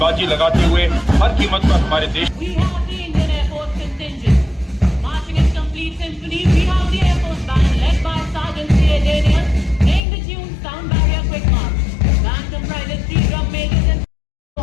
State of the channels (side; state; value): right; drops out; at 10.0 s